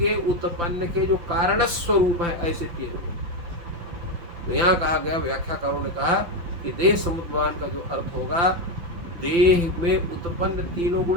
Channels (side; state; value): left; late; 5.9 ms